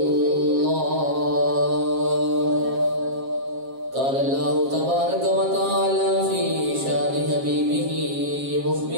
قال الله تبارك وتعالى في شان حبيبه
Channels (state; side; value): late; left; 7.5 ms